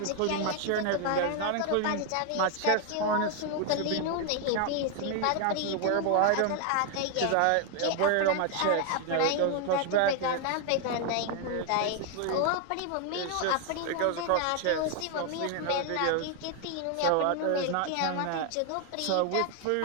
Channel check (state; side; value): different; both; correlation 0.00